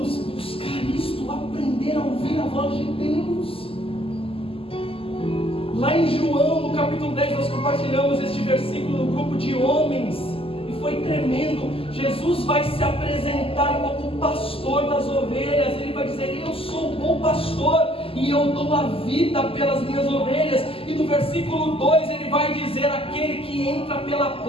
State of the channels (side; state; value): right; late; 0.27 ms